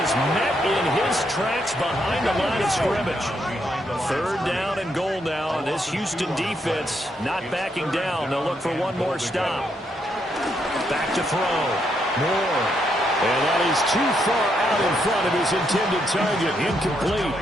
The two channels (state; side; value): normal; both; correlation 0.77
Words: is met in his tracks behind the line of scrimmage. 3rd down and goal now. This Houston defense not backing down. They'll look for one more stop. Back to throw. Moore. And that is too far out in front of his intended target. Incomplete.